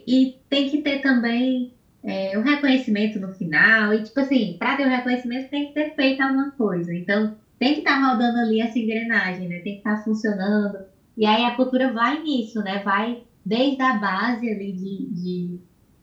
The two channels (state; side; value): identical; both; correlation 1.00